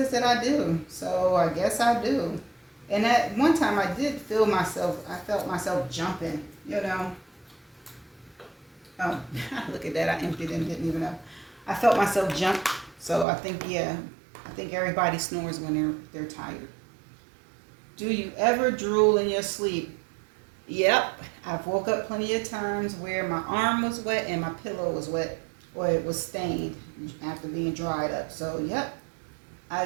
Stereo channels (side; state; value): left; drops out; at 13.2 s